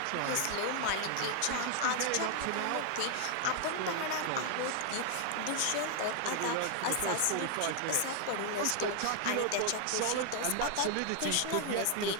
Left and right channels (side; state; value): both; different; correlation 0.00